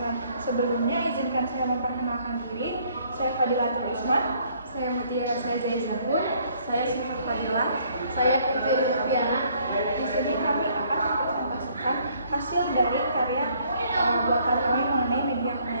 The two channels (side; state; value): both; inverted; correlation -0.64